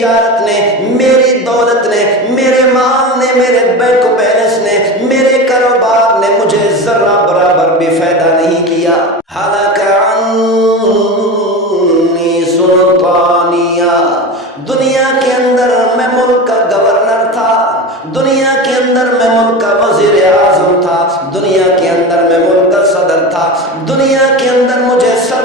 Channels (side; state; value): both; normal; correlation 0.26